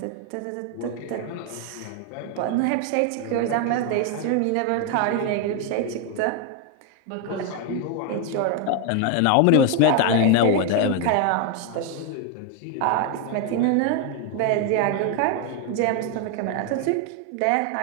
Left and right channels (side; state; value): both; different; correlation 0.01